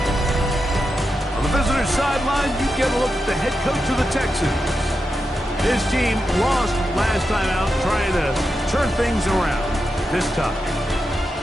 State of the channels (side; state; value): both; normal; correlation 0.88